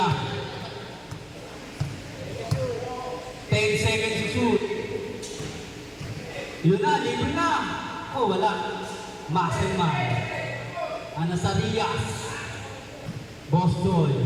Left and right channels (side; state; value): both; identical; correlation 1.00